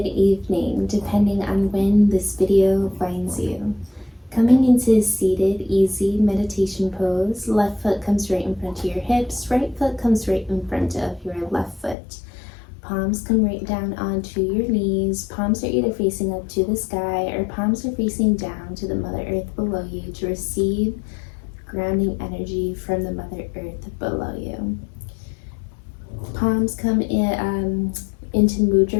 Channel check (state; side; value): drops out; right; at 12.0 s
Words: evening, depending on when this video finds you. Coming into seated, easy meditation pose, left foot comes right in front of your hips, right foot comes right in front of your left foot. Palms come right down onto your knees. Palms are either facing up to the sky or palms are facing down to the Mother Earth below you to receive grounding energy from the Mother Earth below you. Palms come into